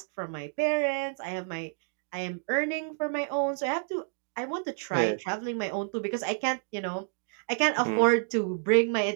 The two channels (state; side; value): silent; left; digital silence